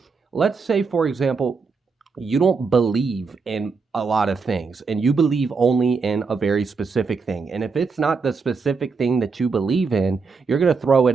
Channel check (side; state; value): left; quieter; 4.8 dB